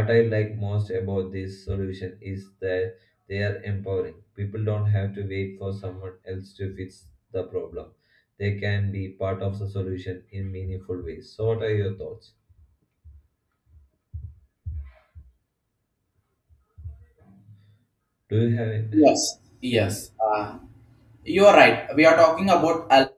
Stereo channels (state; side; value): identical; both; correlation 1.00